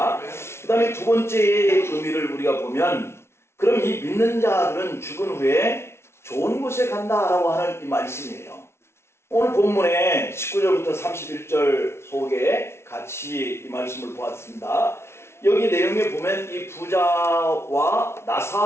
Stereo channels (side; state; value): right; late; 0.12 ms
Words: 그 다음에 두 번째의 의미를 우리가 보면 그럼 이 믿는 자들은 죽은 후에 좋은 곳에 간다라고 하는 이 말씀이에요. 오늘 본문의 19절부터 31절 속에 같이 이 말씀을 보았습니다. 여기 내용에 보면 이 부자와